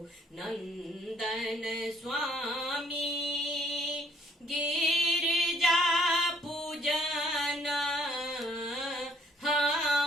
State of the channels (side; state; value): both; normal; correlation 0.64